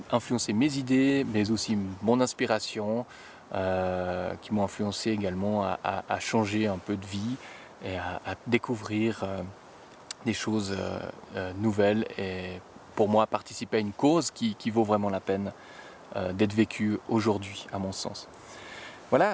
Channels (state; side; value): identical; both; correlation 1.00